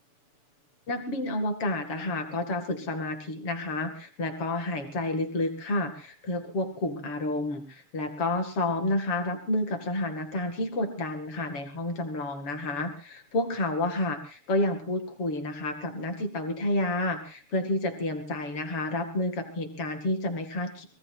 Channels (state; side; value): late; right; 6.9 ms